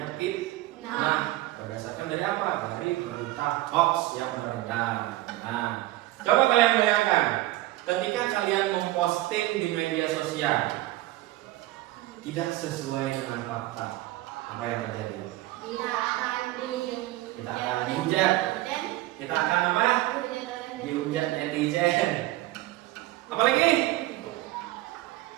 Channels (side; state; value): left; quieter; 17.2 dB